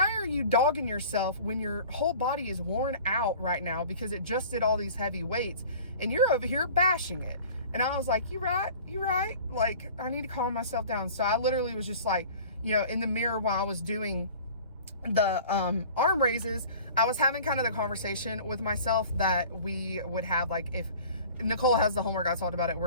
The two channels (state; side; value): inverted; both; correlation -0.44